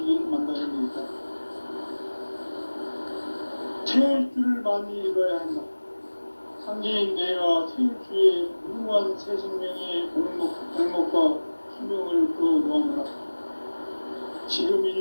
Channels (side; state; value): both; inverted; correlation -1.00